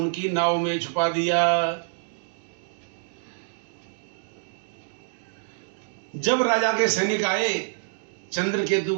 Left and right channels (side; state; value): left; silent; digital silence